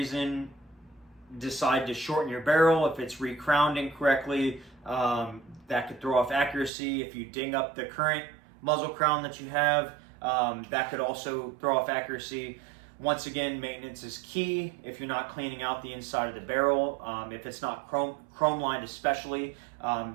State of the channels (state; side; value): drops out; left; at 6.7 s